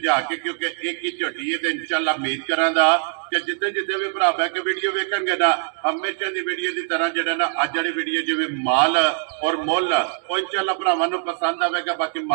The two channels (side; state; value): left; silent; 64 dB below the other